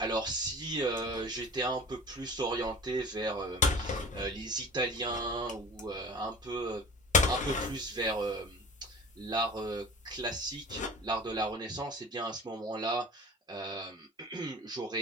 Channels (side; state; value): both; normal; correlation 0.39